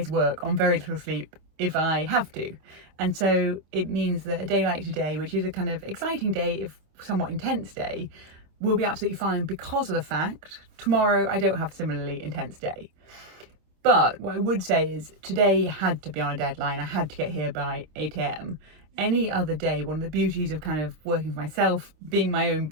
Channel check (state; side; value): late; left; 26 ms